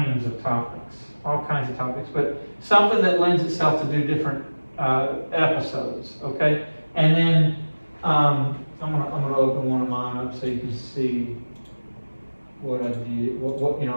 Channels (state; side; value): inverted; both; correlation -1.00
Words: of topics. All kinds of topics. But something that lends itself to do different episodes. Okay. And then I'm gonna open one of mine up so you can see what I did. What